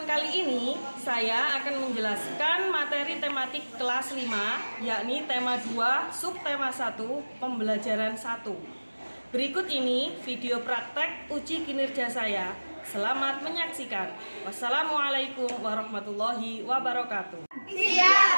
kali ini, saya akan menjelaskan materi tematik kelas 5, yakni tema 2, subtema 1, pembelajaran 1. Berikut ini video praktek uji kinerja saya. Selamat menyaksikan. Wassalamualaikum warahmatullahi wabarakatuh.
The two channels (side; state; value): both; inverted; correlation -1.00